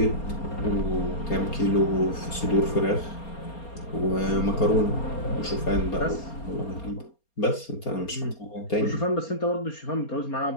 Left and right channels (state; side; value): late; right; 4.3 ms